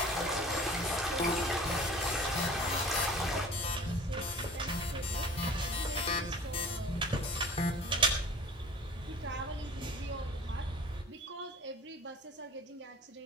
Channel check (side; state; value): both; normal; correlation 0.45